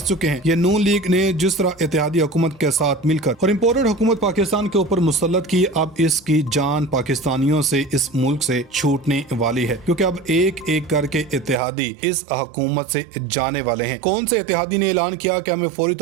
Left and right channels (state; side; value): drops out; left; at 11.6 s